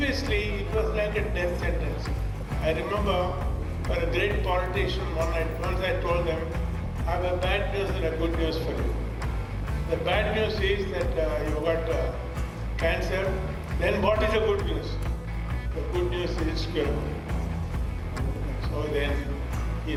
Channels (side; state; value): both; identical; correlation 1.00